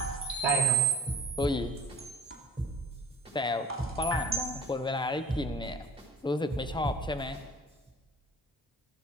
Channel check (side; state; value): both; normal; correlation 0.50